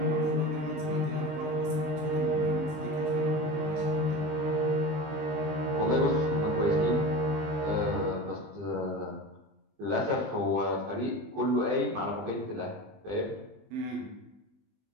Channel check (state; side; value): late; left; 20 ms